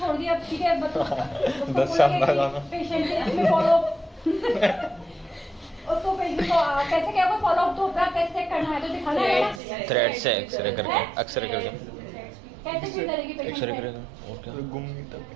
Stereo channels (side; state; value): left; drops out; at 9.6 s